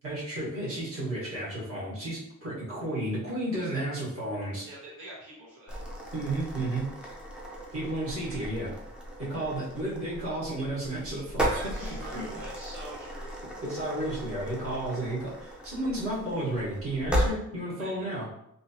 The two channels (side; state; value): both; normal; correlation 0.47